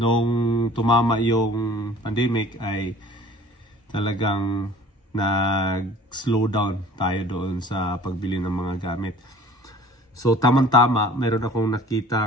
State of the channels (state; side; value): normal; both; correlation 0.48